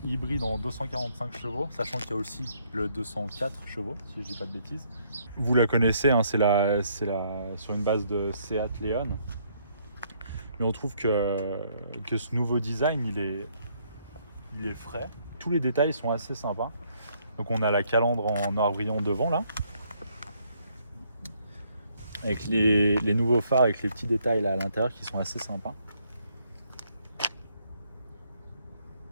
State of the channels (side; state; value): both; inverted; correlation -0.70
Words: hybride en 245 chevaux, sachant qu'il y a aussi le 204 chevaux, si je ne dis pas de bêtises. Vous la connaissez, hein, c'est sur une base de Seat Leon. Mais on trouve que ce nouveau design, il est frais. Tous les détails sont assez sympas. Donc on a la calandre en noir brillant devant là. Avec les nouveaux phares, avec les petits détails là à l'intérieur qui sont assez sympas.